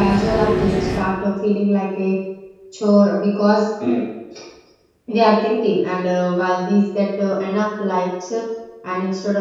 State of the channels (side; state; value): both; identical; correlation 1.00